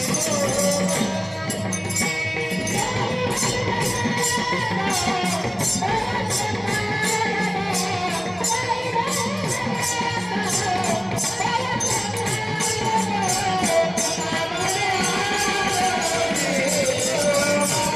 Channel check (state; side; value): identical; both; correlation 1.00